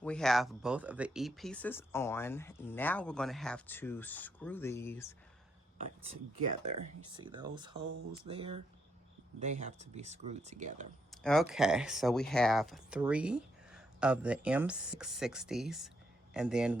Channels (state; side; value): normal; both; correlation 0.77